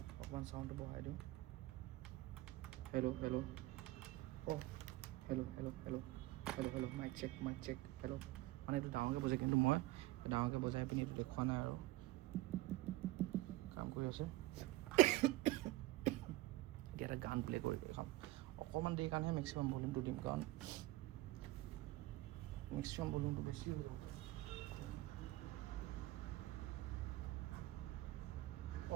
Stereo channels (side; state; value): left; quieter; 18.3 dB